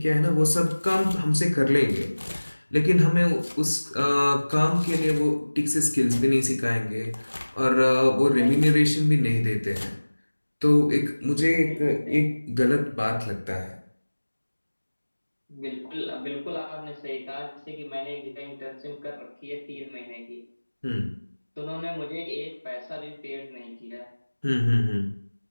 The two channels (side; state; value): both; inverted; correlation -1.00